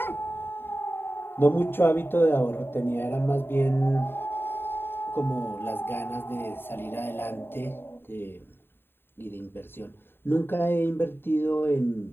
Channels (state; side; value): late; right; 0.11 ms